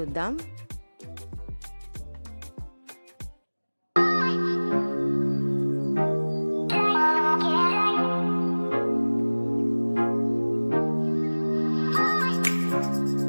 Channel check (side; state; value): both; inverted; correlation -1.00